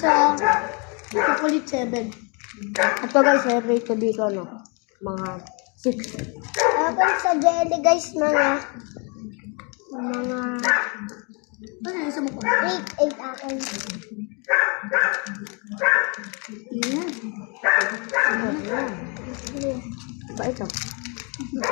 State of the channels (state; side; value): quieter; right; 33.9 dB